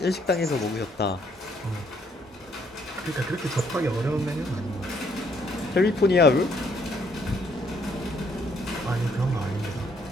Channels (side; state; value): both; normal; correlation 0.68